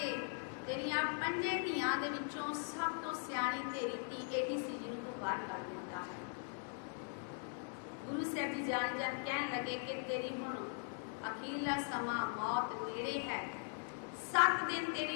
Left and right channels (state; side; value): silent; right; 51 dB below the other